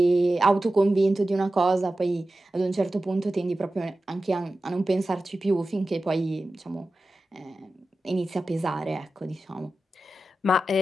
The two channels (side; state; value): both; normal; correlation 0.94